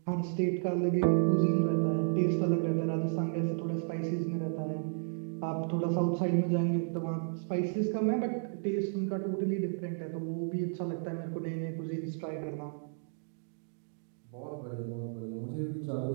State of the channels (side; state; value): left; silent; digital silence